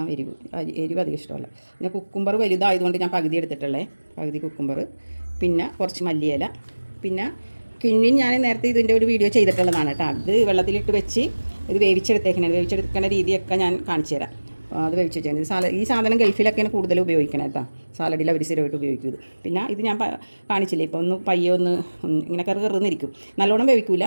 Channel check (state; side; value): inverted; both; correlation -1.00